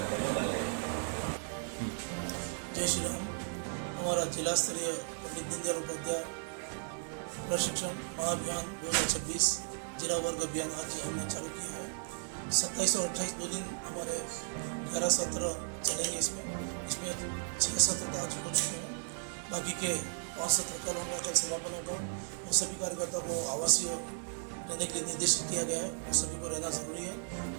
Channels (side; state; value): left; silent; 54 dB below the other